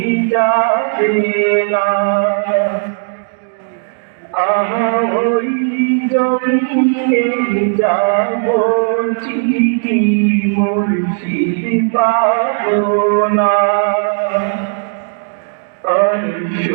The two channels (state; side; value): silent; left; digital silence